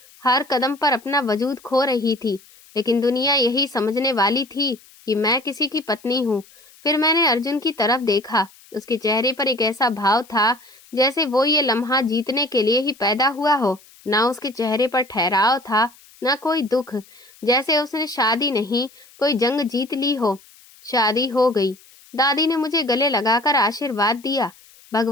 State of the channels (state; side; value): noise; left; hiss, 26 dB below the sound